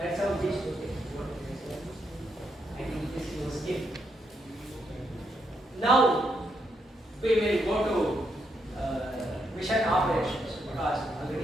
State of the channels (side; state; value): both; normal; correlation 0.79